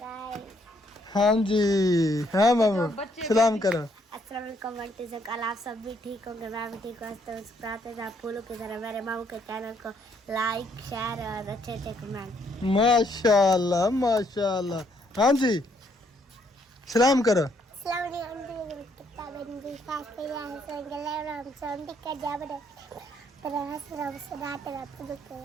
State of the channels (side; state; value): both; normal; correlation 0.70